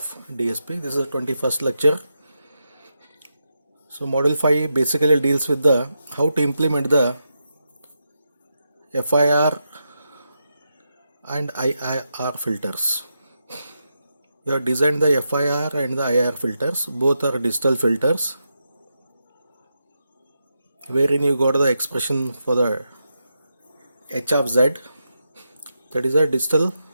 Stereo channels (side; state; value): both; inverted; correlation -0.86